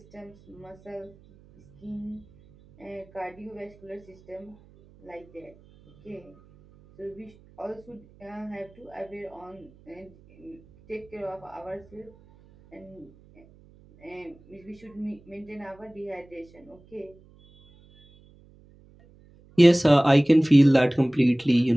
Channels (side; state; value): right; noise; hum, 26 dB below the sound